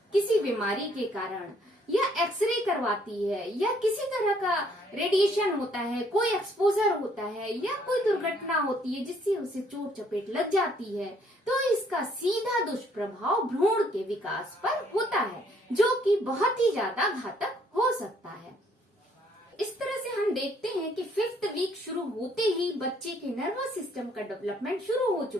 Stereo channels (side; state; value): both; normal; correlation 0.65